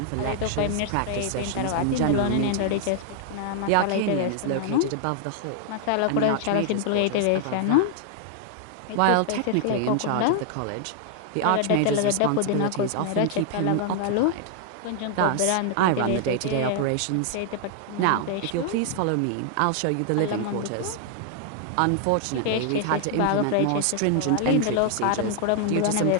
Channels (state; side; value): different; both; correlation 0.00